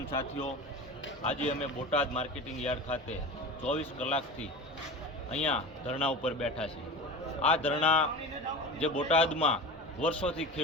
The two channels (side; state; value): both; normal; correlation 0.31